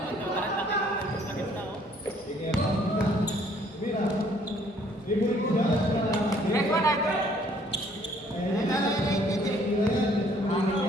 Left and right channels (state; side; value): normal; both; correlation 0.61